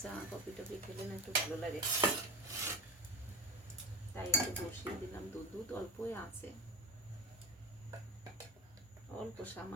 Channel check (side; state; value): both; normal; correlation 0.28